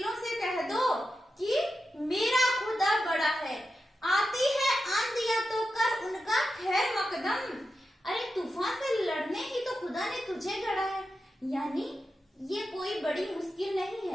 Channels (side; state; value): both; normal; correlation 0.90